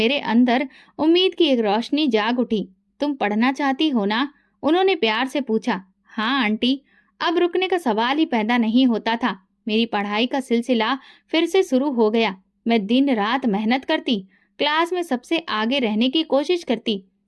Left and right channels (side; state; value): both; identical; correlation 1.00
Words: अंदर उम्मीद की एक रोशनी जाग उठी। तुम पढ़ना चाहती हो ना? उन्होंने प्यार से पूछा। हाँ आंटी। अब रुकने का सवाल ही पैदा नहीं होता था। मेरी पढ़ाई का सिलसिला फिर से शुरू हो गया। मैं दिन रात मेहनत करती, क्लास में सबसे आगे रहने की कोशिश करती।